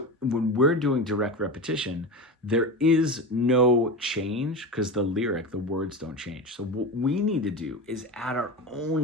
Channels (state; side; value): normal; both; correlation 0.25